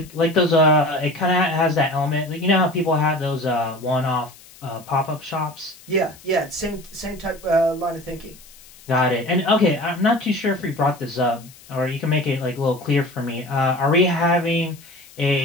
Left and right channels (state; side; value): noise; left; hiss, 23 dB below the sound